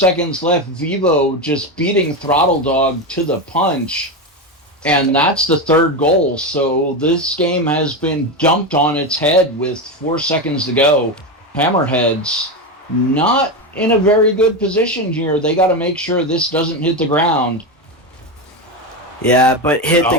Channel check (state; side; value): normal; both; correlation 0.15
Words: left. Vivo just beating Throttle Dog to the punch. And that's the third goal. So this game has been dumped on its head with 4 seconds to go. Hammerheads not in a very good position here. They got to make sure this doesn't hit the ground. Yeah, but hit